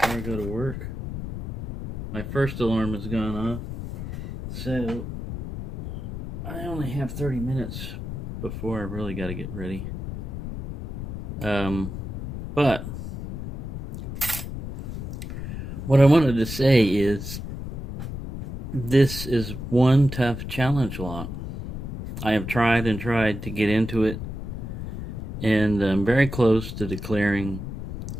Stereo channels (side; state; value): left; noise; rumble, 7 dB below the sound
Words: I go to work. My first alarm has gone off, so I only have 30 minutes before I really got to get ready. But what I wanted to say is this is one tough challenge lock. I have tried and tried to get into it, and I'm very close to declaring